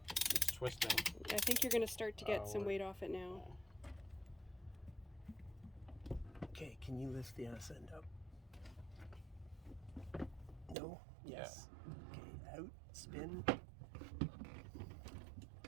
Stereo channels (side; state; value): left; drops out; at 10.8 s